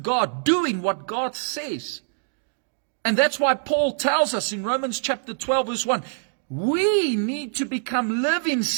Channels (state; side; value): silent; left; digital silence